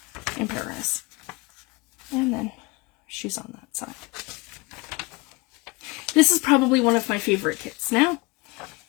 in Paris. And then she's on that side. This is probably one of my favorite kits now.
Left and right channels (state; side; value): quieter; right; 24.6 dB